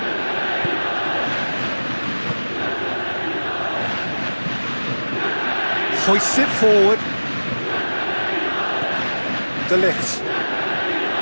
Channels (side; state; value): both; inverted; correlation -1.00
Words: Hoists it forward. De Ligt.